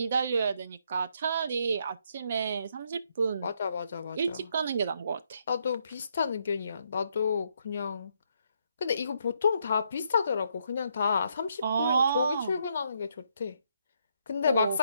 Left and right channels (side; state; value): both; inverted; correlation -0.74